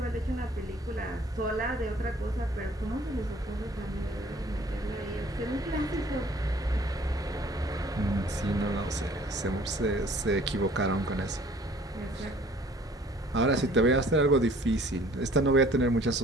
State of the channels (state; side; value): normal; both; correlation 0.55